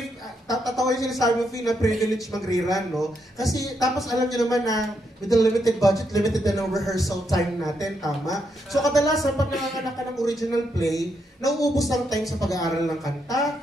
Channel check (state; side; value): normal; both; correlation 0.79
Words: tatawa yung sinasabi mo, Fee, na privilege mag-rerun, no? Kasi, tapos alam nyo naman na with the limited budget, limited na ng rehearsal time natin, tama? So, kadalasan, pag nanganganak ka ng original play, nauubos ang time sa pag-aaral ng kanta,